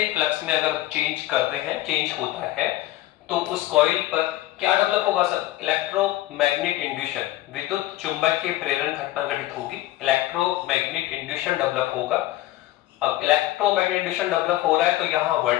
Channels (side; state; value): right; quieter; 16.1 dB